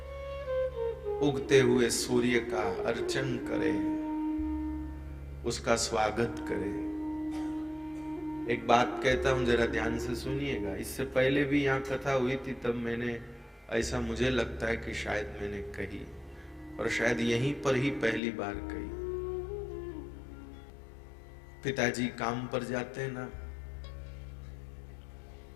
उगते हुए सूर्य का अर्चन करें, उसका स्वागत करें। एक बात कहता हूं, जरा ध्यान से सुनिएगा। इससे पहले भी यहाँ कथा हुई थी, तब मैंने, ऐसा मुझे लगता है कि शायद मैंने कही, और शायद यहीं पर ही पहली बार कही। पिताजी काम पर जाते हैं ना,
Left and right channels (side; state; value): right; drops out; at 18.2 s